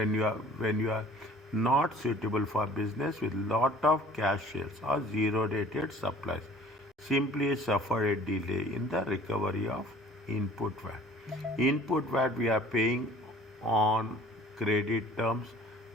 you are not suitable for business with lot of cash sales or zero rated supplies. Simply suffer a delay in the recovery of input VAT. Input VAT we are paying on credit terms,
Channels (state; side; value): normal; both; correlation 0.50